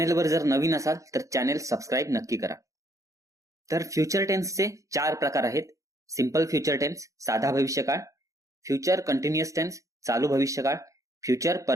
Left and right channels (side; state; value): left; late; 0.16 ms